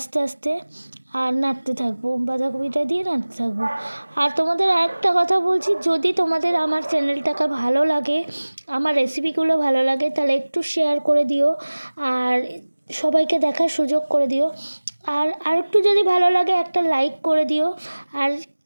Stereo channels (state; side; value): inverted; both; correlation -1.00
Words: আস্তে, আর নাড়তে থাকবো, বাঁধাকপিটা দিয়ে নাড়তে থাকবো। আর তোমাদের আরেকটা কথা বলছি, যদি তোমাদের আমার চ্যানেলটাকে ভালো লাগে, আমার রেসিপিগুলো ভালো লাগে, তাহলে একটু শেয়ার করে দিও, আর সবাইকে দেখার সুযোগ করে দিও। আর আরেকটু যদি ভালো লাগে একটা লাইক করে দিও। আর